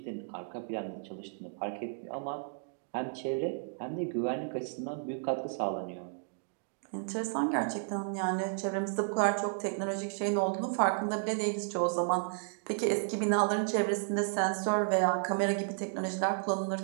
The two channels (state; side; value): silent; left; digital silence